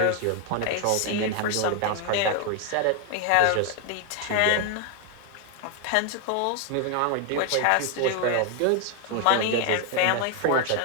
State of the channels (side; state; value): both; different; correlation 0.01